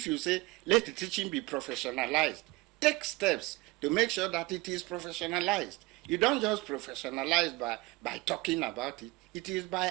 you say, let the teaching be professionalized, take steps to make sure that it is professionalized. You don't just professionalize by talking about it. It is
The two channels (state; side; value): quieter; left; 22.3 dB